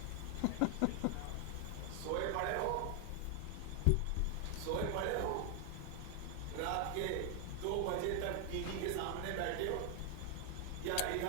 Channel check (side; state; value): both; different; correlation 0.00